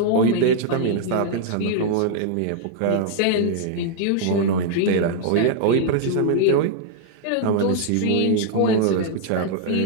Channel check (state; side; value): different; both; correlation -0.01